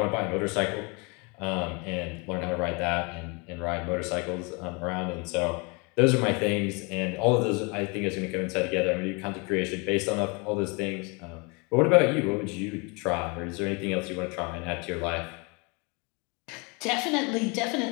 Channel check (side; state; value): right; quieter; 30.4 dB